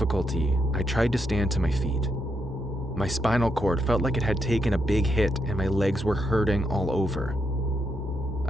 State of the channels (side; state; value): both; normal; correlation 0.80